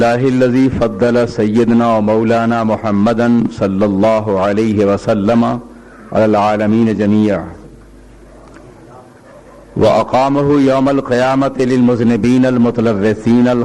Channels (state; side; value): identical; both; correlation 1.00